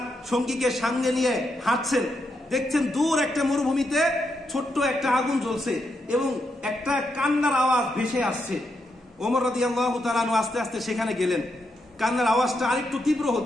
সঙ্গীকে সঙ্গে নিয়ে হাঁটছেন, দেখছেন দূর একটা মরুভূমিতে ছোট্ট একটা আগুন জ্বলছে এবং একটা কান্নার আওয়াজ ভেসে আসছে। ওমর রাদিয়াল্লাহু তাআলা আনহু আস্তে আস্তে সেখানে গেলেন। কান্নার আওয়াজটা আরেকটু তীব্র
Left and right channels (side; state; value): both; normal; correlation 0.82